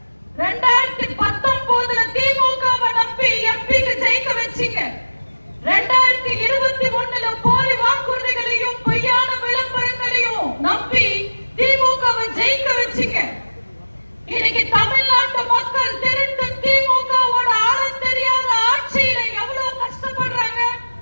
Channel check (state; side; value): inverted; both; correlation -1.00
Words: 2019 திமுகவை நம்பி எம்பிக்கு ஜெயிக்க வச்சீங்க. 2021 போலி வாக்குறுதிகளையும் பொய்யான விளம்பரங்களையும் நம்பி திமுகவை ஜெயிக்க வச்சீங்க. இன்னைக்கு தமிழ்நாட்டு மக்கள் திருட்டு திமுகவோட ஆழம் தெரியாத ஆட்சியில எவ்வளவு கஷ்டப்படுறாங்க,